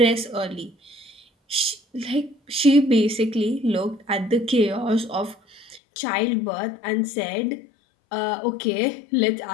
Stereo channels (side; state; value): right; drops out; at 5.8 s